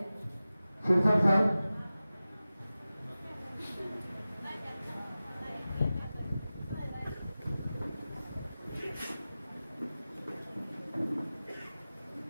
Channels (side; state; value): both; inverted; correlation -0.96